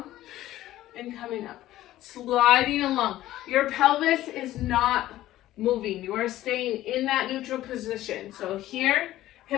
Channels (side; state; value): right; quieter; 14.6 dB